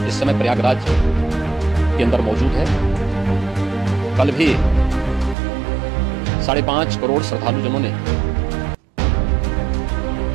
इस समय प्रयागराज के अंदर मौजूद है। कल भी 5.5 करोड़ श्रद्धालुजनों ने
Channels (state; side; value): drops out; left; at 5.4 s